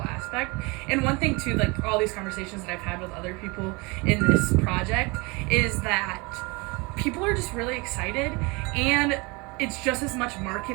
aspect. And one thing too, like all these conversations that I've had with other people in this project, is that people are just really excited, and it's just as much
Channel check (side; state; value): left; quieter; 27.0 dB